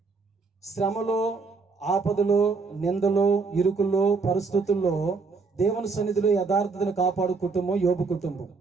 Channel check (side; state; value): left; quieter; 4.4 dB